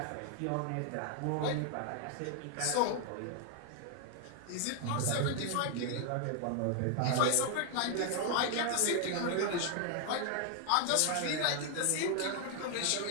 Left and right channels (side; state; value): both; different; correlation 0.00